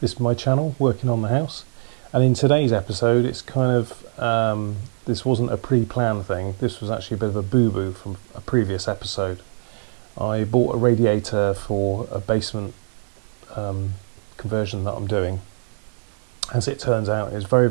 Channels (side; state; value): left; silent; digital silence